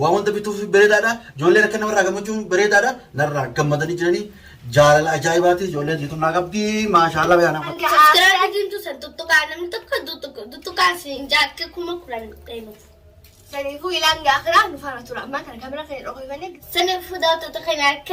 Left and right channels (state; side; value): identical; both; correlation 1.00